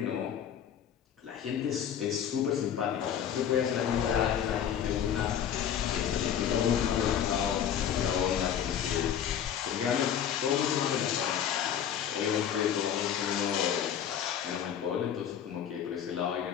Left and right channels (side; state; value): right; quieter; 9.1 dB